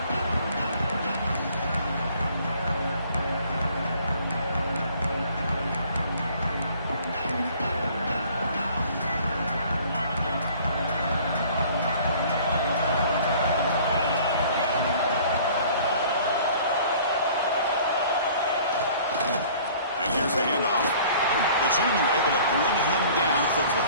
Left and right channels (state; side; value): inverted; both; correlation -0.52